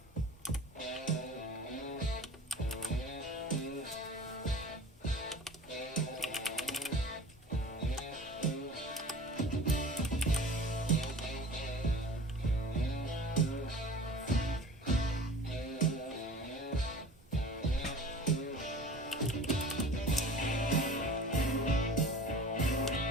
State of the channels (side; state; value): both; normal; correlation 0.41